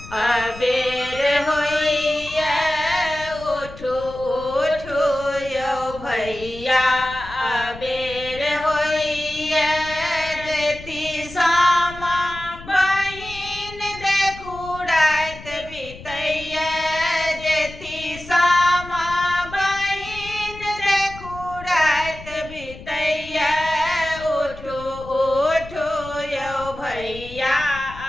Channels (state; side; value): noise; left; rumble, 16 dB below the sound